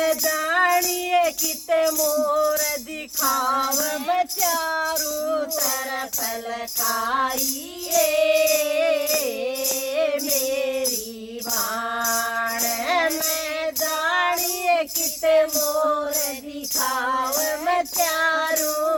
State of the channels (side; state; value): both; identical; correlation 1.00